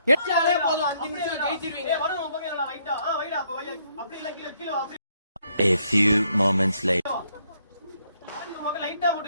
எச்சாலே போதும் 5 நிமிஷம் ஜெயிச்சிருவீங்க வரும் ஓம் பங்க லைட்டா வைடா அப்ப வை அப்படி இல்ல கீழ அப்படி A few moments later. லைட்டா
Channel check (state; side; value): inverted; both; correlation -0.71